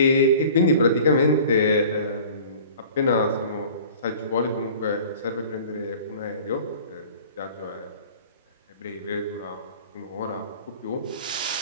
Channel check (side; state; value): both; inverted; correlation -0.45